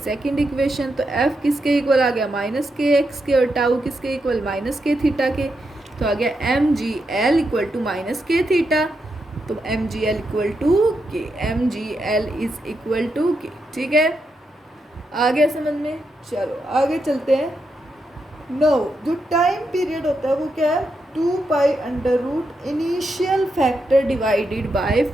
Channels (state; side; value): normal; both; correlation 0.84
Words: इक्वेशन। तो एफ किसके इक्वल आ गया, माइनस के एक्स के, और टाउ किसके इक्वल, माइनस के थीटा के, तो आ गया M ji L equal to minus K theta, तो M ji L equal to K, M ji L is equal to K, ठीक है, आ गया समझ में। चलो आगे चलते हैं। नो जो टाइम पीरियड होता है वो क्या है, 2 pi under root initial factor divided by